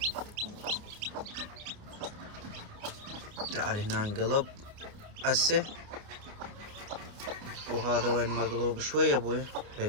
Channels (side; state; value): left; late; 28 ms